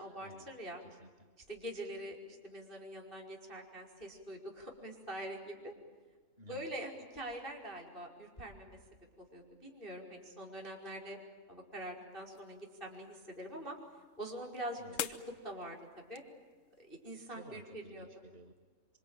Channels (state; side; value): late; right; 3.7 ms